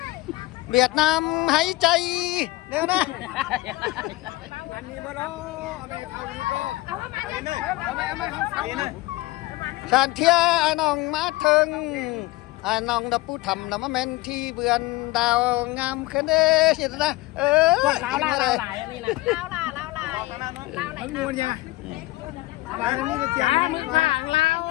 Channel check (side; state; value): right; quieter; 20.0 dB